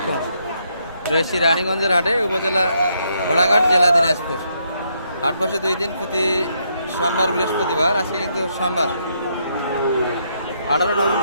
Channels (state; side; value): inverted; both; correlation -0.75